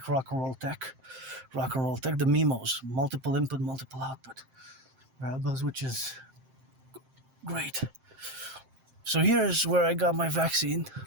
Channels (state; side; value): late; left; 7.6 ms